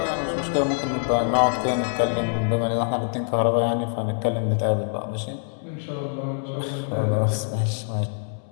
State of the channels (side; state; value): right; silent; 62 dB below the other